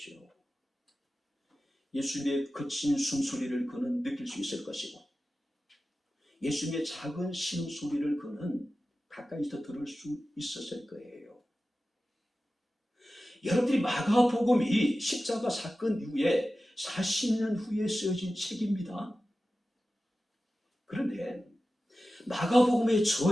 예수님의 거친 숨소리를 그는 느낄 수 있을 것이고 예수님의 작은 신음소리를 그는 가까이서 들을 수 있었을 거예요. 여러분들이 마가복음이 십자가 사건 이후에 40년 후에 쓰여진 책입니다. 그런데 마가복음의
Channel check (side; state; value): both; normal; correlation 0.94